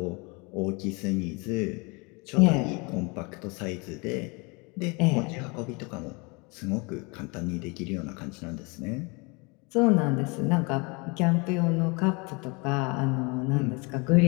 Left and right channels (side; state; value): right; quieter; 29.2 dB